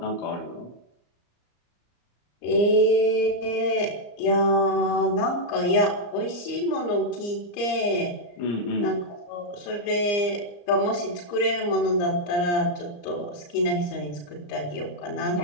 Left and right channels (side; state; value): right; late; 34 ms